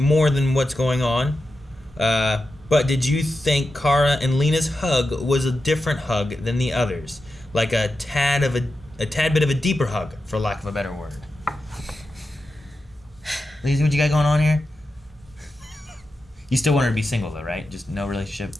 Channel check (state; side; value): normal; both; correlation 0.90